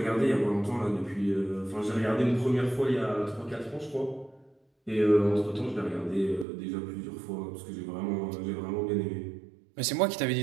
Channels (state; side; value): drops out; left; at 6.5 s